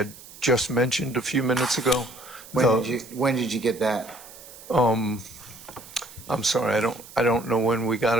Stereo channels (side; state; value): right; noise; hiss, 18 dB below the sound